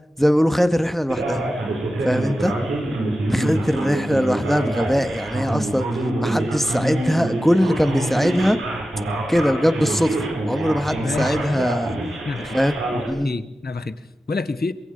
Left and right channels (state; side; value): normal; both; correlation 0.93